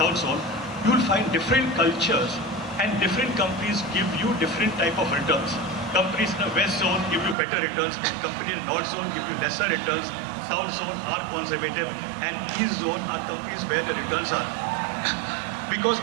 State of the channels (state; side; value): drops out; left; at 7.4 s